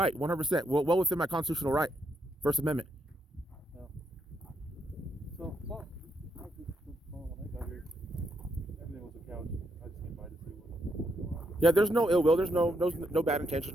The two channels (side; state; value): both; normal; correlation 0.77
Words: 100%. Well within my constitutional right. First Amendment. So, well, when I got here, everything was a couch. I just came by to see what was going on. Yeah, there's no ill will. There's no bad